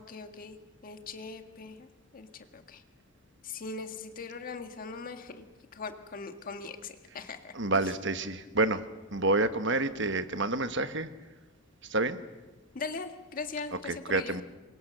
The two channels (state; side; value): normal; both; correlation -0.07